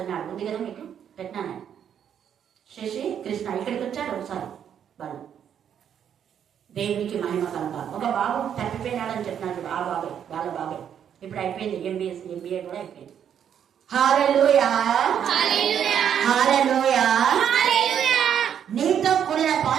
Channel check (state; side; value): quieter; left; 8.8 dB